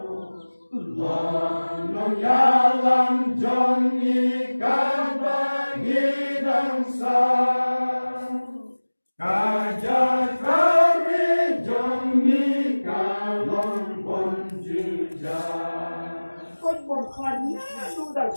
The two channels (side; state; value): both; inverted; correlation -1.00